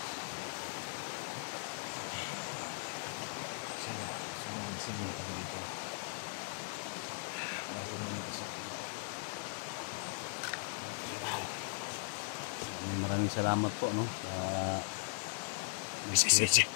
Maraming salamat po no sa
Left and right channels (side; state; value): right; silent; digital silence